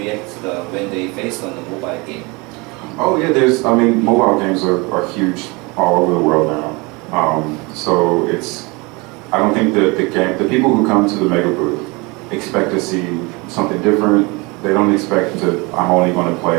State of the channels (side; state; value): left; quieter; 26.8 dB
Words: when they face on the mobile game. Oh yeah, I mean, mobile games are huge all over the world now. So I don't think that the people who come to the mega booth expect to see something different. They don't expect I'm only going to